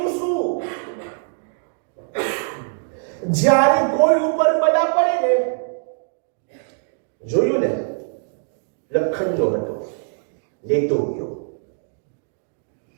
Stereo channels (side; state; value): left; silent; digital silence